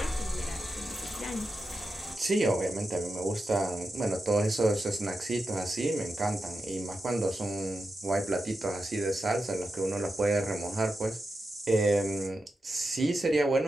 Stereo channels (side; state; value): both; normal; correlation 0.89